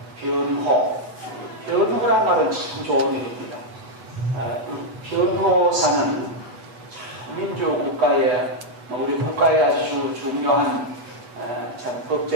변호란 말은 참 좋은 일입니다. 이 변호사는 참 민주국가의 우리 국가에 아주 중요한 참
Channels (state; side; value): late; left; 8.0 ms